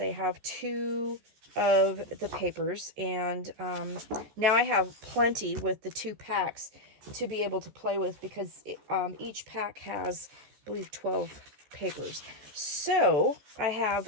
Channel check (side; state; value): left; late; 14 ms